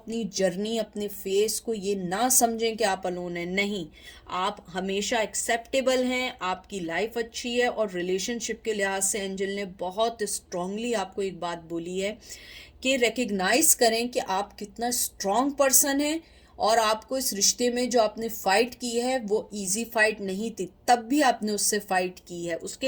जर्नी, अपने फेस को ये ना समझें कि आप अलोन हैं, नहीं, आप हमेशा एक्सेप्टेबल हैं, आपकी लाइफ अच्छी है। और रिलेशनशिप के लिहाज से एंजल ने बहुत स्ट्रांगली आपको एक बात बोली है कि रिकग्नाइज करें कि आप कितना स्ट्रांग पर्सन है, और आपको इस रिश्ते में जो आपने फ़ाइट की है वो इजी फाइट नहीं थी, तब भी आपने उससे फ़ाइट की है।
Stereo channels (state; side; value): identical; both; correlation 1.00